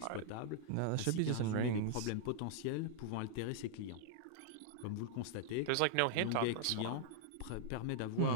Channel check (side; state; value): both; different; correlation -0.01